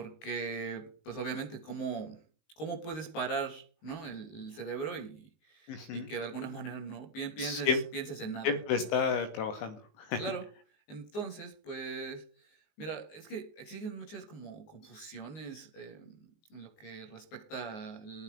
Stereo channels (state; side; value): late; right; 19 ms